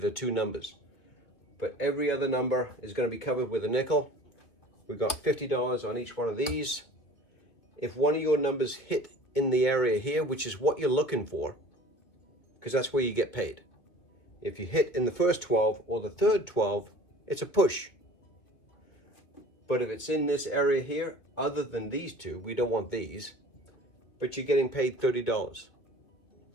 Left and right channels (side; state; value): right; late; 2.3 ms